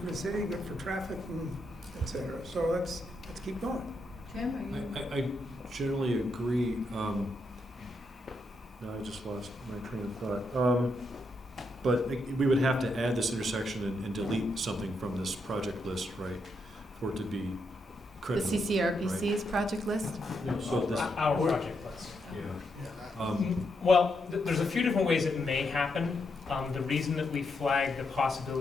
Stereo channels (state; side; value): normal; both; correlation 0.81